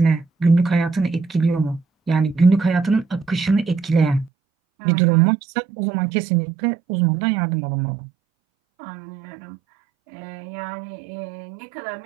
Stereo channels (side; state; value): left; drops out; at 4.3 s